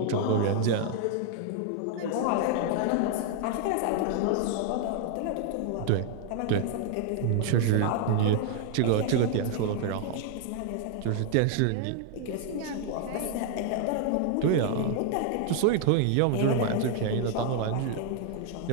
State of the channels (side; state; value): both; different; correlation 0.00